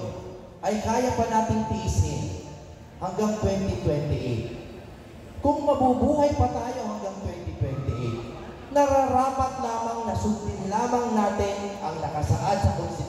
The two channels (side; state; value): both; identical; correlation 1.00